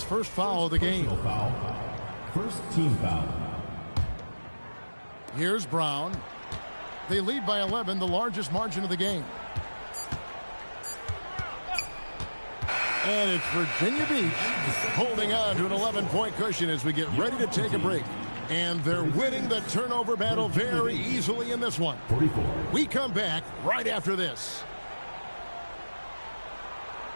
first foul of the game. First team foul. Here's Brown. They lead by 11, the largest margin of the game. And it's Virginia Beach holding on to an 11-point cushion as we get ready to take a break. And they're winning the turnover battle very easily in this one. 44. We come back right after this.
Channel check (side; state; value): both; inverted; correlation -1.00